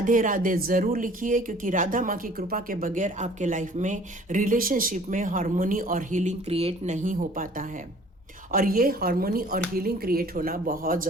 राधे ज़रूर लिखिए, क्योंकि राधा माँ की कृपा के बगैर आपके लाइफ में, रिलेशनशिप में हार्मोनी और हीलिंग क्रिएट नहीं हो पाता है। और ये हार्मोनी और हीलिंग क्रिएट होना बहुत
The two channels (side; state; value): both; normal; correlation 0.52